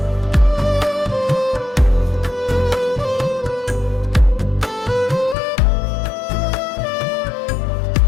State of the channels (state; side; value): drops out; right; at 5.4 s